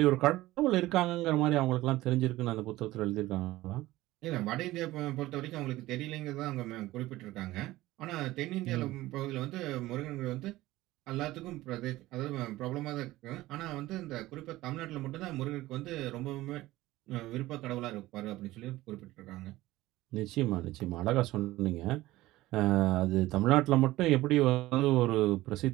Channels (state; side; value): quieter; left; 17.3 dB